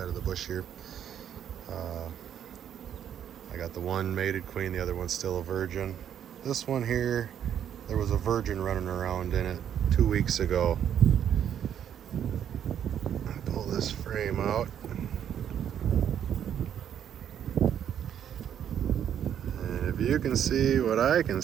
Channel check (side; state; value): left; quieter; 9.4 dB